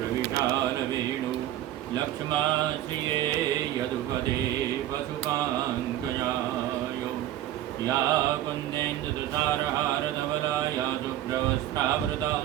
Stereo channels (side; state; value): left; quieter; 13.0 dB